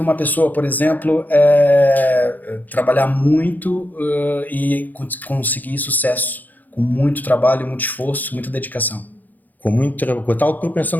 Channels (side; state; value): right; late; 0.084 ms